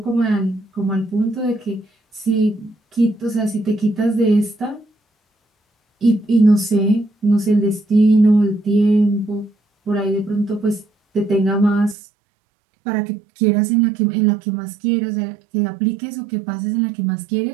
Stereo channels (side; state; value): left; drops out; at 12.0 s